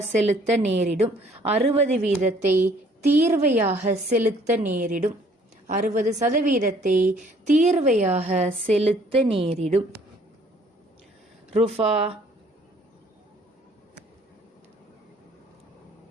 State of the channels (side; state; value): both; normal; correlation 0.60